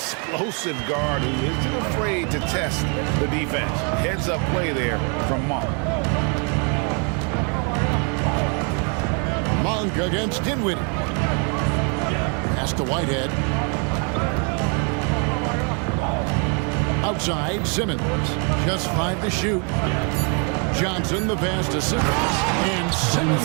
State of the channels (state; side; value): quieter; left; 37.2 dB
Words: guard who isn't afraid to test the defense. Heads up play there from Monk. Monk against Dinwiddie. Pass to Whitehead. Outside, Simmons. Just 5 to shoot. Johnson the pass to Simmons. And